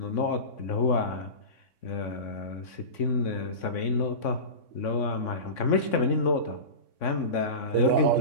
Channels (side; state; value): right; late; 3.6 ms